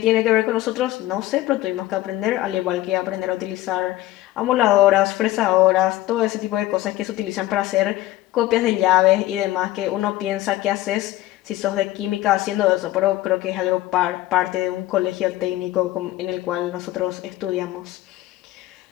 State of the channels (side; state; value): right; quieter; 15.8 dB